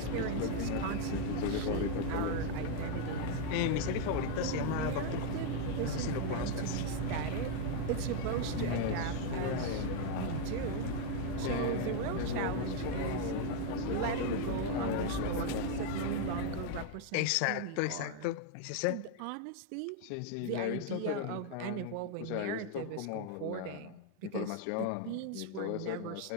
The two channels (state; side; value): different; both; correlation 0.01